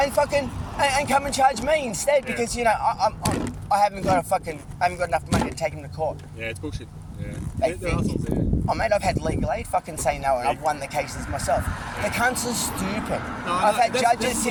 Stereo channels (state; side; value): identical; both; correlation 1.00